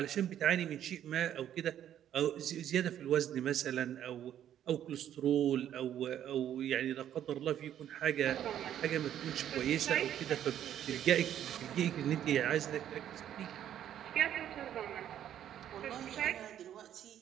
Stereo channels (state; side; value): quieter; left; 10.7 dB